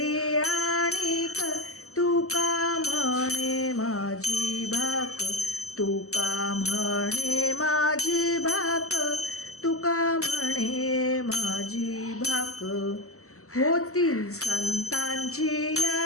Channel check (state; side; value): late; right; 0.64 ms